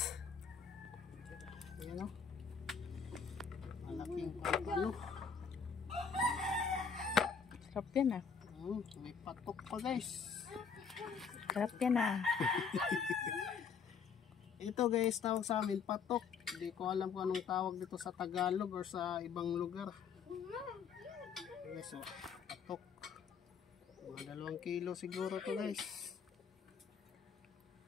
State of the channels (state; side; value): quieter; right; 6.1 dB